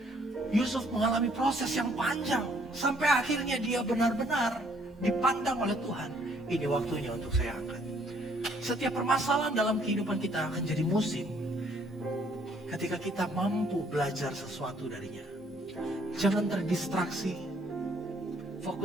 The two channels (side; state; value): both; normal; correlation 0.65